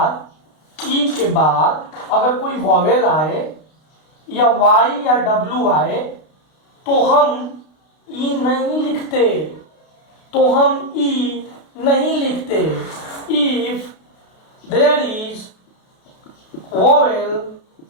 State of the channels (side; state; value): right; late; 32 ms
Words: बाद अगर कोई वॉवेल आए या वाई या डब्ल्यू आए तो हम ई नहीं लिखते, इफ देयर इज वॉवेल